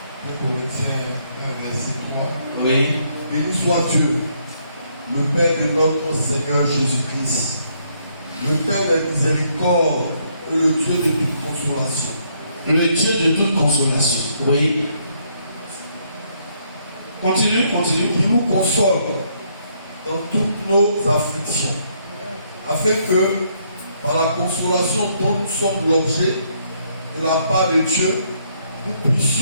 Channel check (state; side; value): inverted; both; correlation -0.71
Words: 2 Corinthiens 1, verset 3. Oui. Béni soit Dieu, le Père de notre Seigneur Jésus-Christ, le Père de miséricorde et le Dieu de toute consolation. Le Dieu de toute consolation. Oui. Continue. Qui nous console dans toutes nos afflictions, afin que, par la consolation dont nous sommes l'objet de la part de Dieu, nous